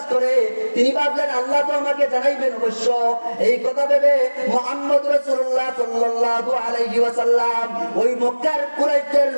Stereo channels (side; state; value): both; inverted; correlation -1.00